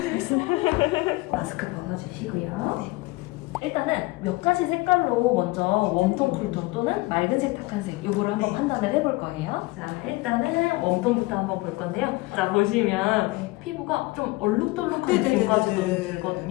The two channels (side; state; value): right; quieter; 22.0 dB